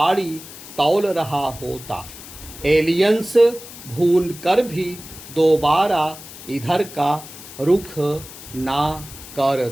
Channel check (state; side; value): noise; left; hiss, 15 dB below the sound